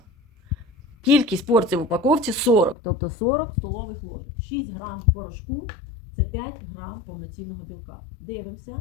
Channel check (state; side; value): drops out; right; at 2.8 s